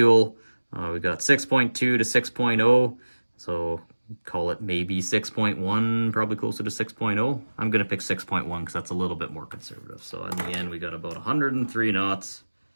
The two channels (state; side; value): inverted; both; correlation -1.00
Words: We got 6.2 to 6.0, so call it maybe 6.1, probably closer to 6.0. I'm going to pick 6.1 because that's a little bit more conservative. So in the end, we got about 103 knots,